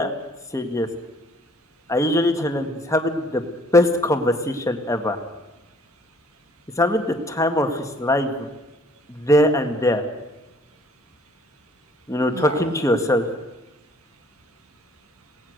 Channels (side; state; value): both; normal; correlation 0.58